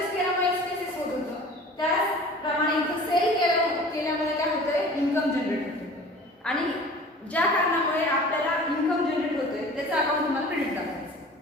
केल्यामुळे एक्सपेन्सेस होत होतं, त्याचप्रमाणे इथं सेल केल्यामुळे काय होतंय, इन्कम जनरेट होतंय. आणि ज्या कारणामुळे आपल्याला इन्कम जनरेट होतोय त्याचं अकाउंट तुम्हाला क्रेडिट दाखवायचं.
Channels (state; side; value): normal; both; correlation 0.43